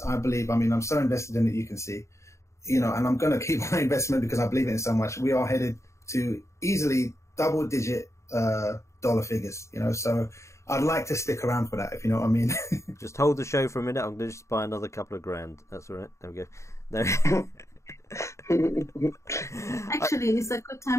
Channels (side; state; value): right; late; 0.14 ms